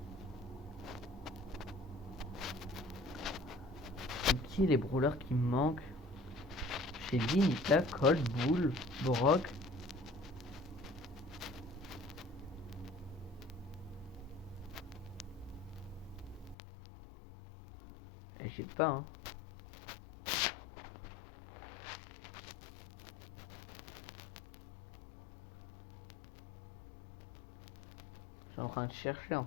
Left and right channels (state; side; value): drops out; right; at 16.6 s